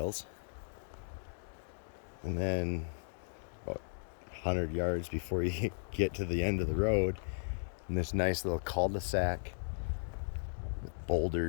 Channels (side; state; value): right; silent; digital silence